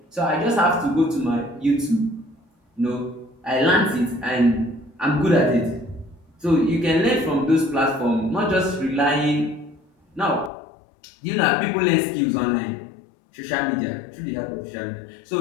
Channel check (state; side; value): drops out; right; at 10.5 s